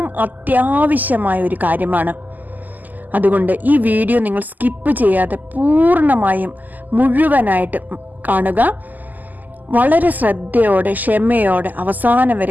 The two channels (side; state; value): left; late; 0.083 ms